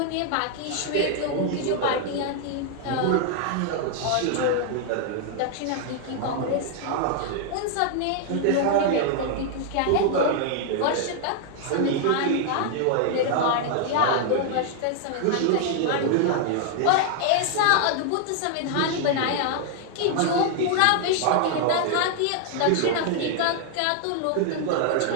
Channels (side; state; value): both; different; correlation 0.00